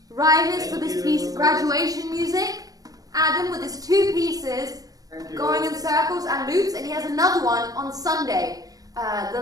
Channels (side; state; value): left; late; 0.18 ms